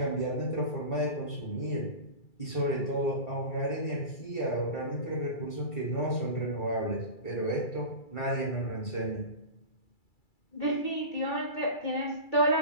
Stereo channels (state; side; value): late; right; 2.3 ms